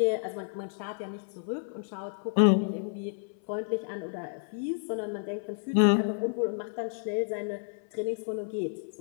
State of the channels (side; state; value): right; silent; 57 dB below the other